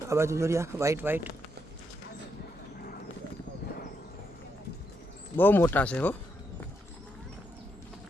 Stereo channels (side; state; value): both; normal; correlation 0.80